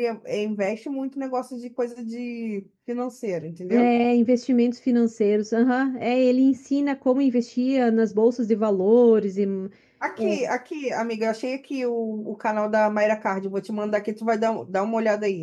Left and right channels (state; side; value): identical; both; correlation 1.00